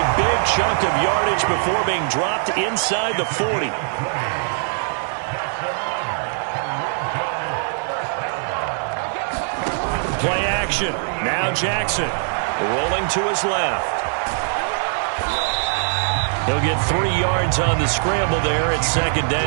big chunk of yardage before being dropped inside the 40. Play action. Now Jackson rolling to his left. He'll get 3 yards on the scramble there at second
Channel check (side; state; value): left; silent; 65 dB below the other